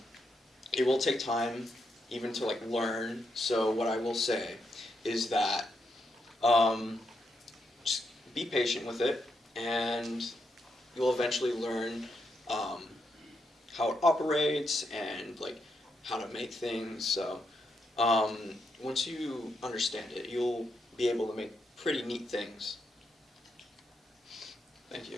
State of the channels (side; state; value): both; normal; correlation 0.81